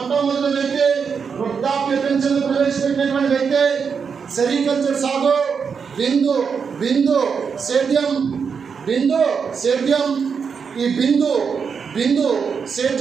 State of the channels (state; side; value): quieter; left; 6.1 dB